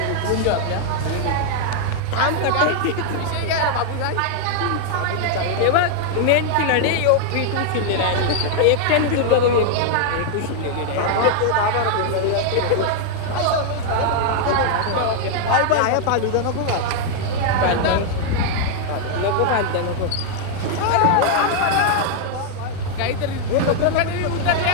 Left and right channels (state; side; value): different; both; correlation 0.00